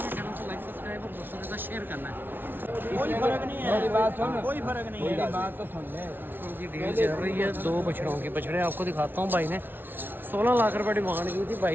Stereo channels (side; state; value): left; late; 0.098 ms